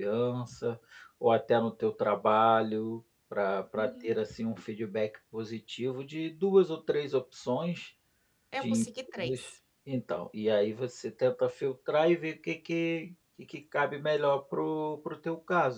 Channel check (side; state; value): both; identical; correlation 1.00